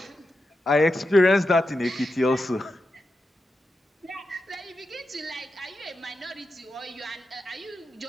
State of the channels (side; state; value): both; normal; correlation 0.88